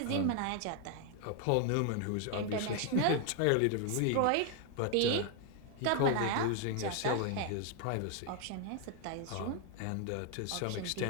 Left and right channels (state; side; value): different; both; correlation 0.00